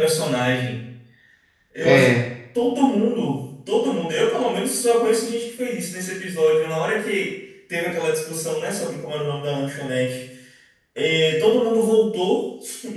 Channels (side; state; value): both; identical; correlation 1.00